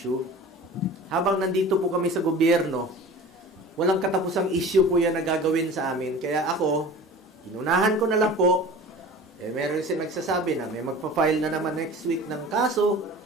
Habang nandito po kami sa gobyerno, walang katapusang issue po yan na gagawin sa amin. Kaya ako, inunahan ko na lang po. Meron siya nagsasabi na may magpa-file na naman next week ng kaso,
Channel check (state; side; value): normal; both; correlation 0.39